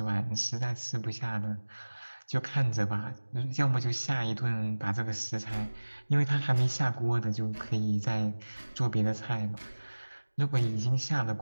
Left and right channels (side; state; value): both; inverted; correlation -1.00